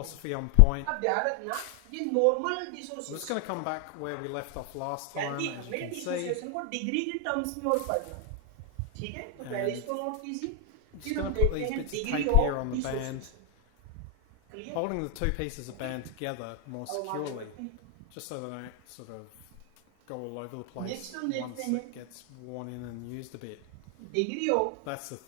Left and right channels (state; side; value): different; both; correlation 0.00